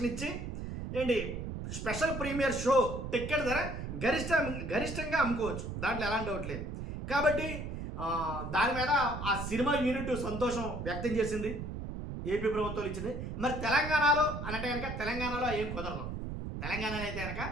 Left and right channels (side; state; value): right; noise; rumble, 6 dB below the sound